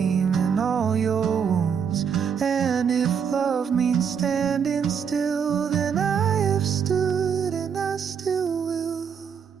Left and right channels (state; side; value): quieter; left; 7.1 dB